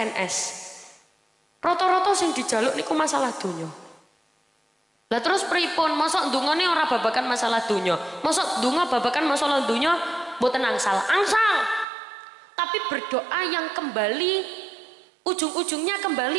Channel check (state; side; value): drops out; left; at 11.9 s